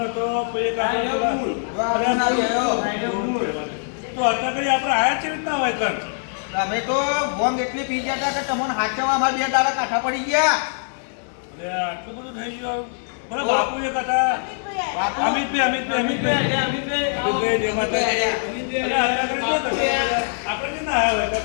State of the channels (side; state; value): right; silent; digital silence